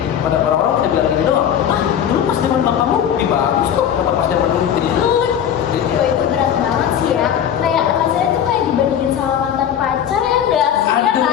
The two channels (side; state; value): right; quieter; 9.3 dB